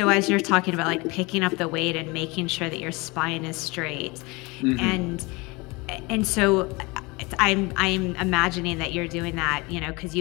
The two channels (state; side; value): quieter; right; 25.4 dB